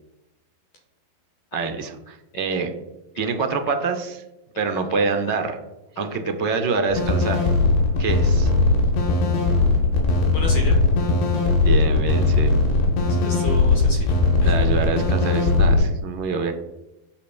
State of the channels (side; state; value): right; late; 12 ms